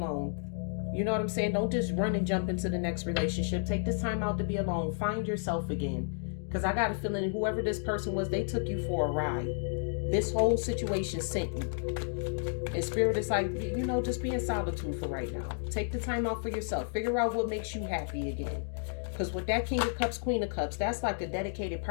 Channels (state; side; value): silent; right; digital silence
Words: You know what I'm saying? Don't just run and jump into the next relationship. Take this time out to be alone. Find yourself again. Because I got a feeling whoever this person was, they took you for a ride. This whole situation sent you. And Spirit is like, you know, just be in solitude for right now. Take the time out for yourself. Figure out what makes you happy again. Because with that King of Cups, Queen of Cups, that's like a dedicated